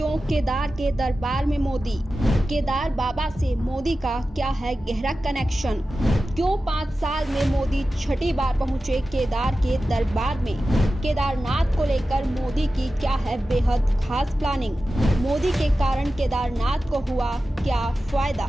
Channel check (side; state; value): both; normal; correlation 0.93